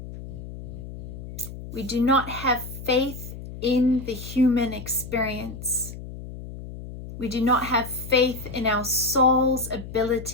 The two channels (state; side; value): noise; left; hum, 11 dB below the sound